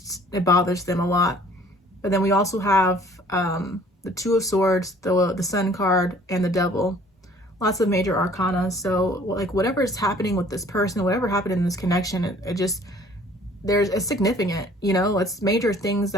it bothers them a lot. But then we also have the Two of Swords, the Sun card, and the Devil. Lots of major arcana. So like whatever is happening with this person, whatever happened in this connection, it just, it's significant, you know, it's major things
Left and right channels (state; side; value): normal; both; correlation 0.55